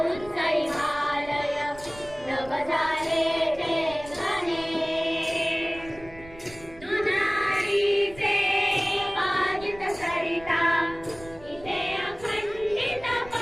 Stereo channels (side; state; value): right; noise; rumble, 19 dB below the sound